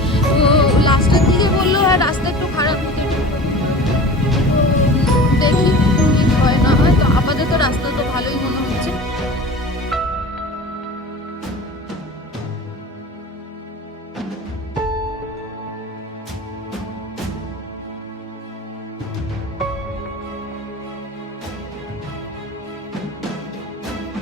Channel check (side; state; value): both; normal; correlation 0.37